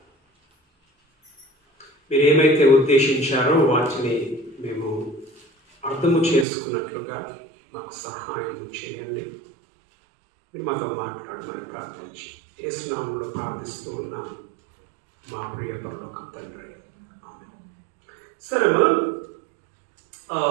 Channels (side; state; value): left; drops out; at 6.5 s